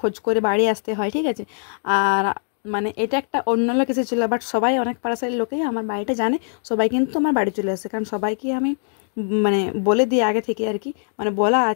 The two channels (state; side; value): silent; right; digital silence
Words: করে বাড়ি আসতে হয়, ঠিক আছে। আর মানে এটা একটা অন্য লোক এসেছিল, বাট সবাই, অনেক পার্সেলের লোকেই আমার বাড়িটা জানে। সবাই কিন্তু আমার বাড়ি চলে আসে, কারণ সবাইকে আমি মানে বলে দিই আগে থেকে আর কি। মানে বলা